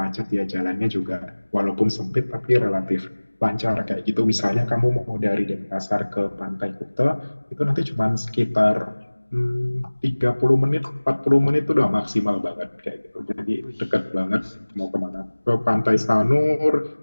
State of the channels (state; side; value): inverted; both; correlation -1.00